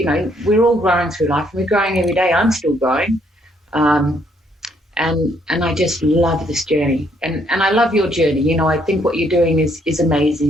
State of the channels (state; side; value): normal; both; correlation 0.70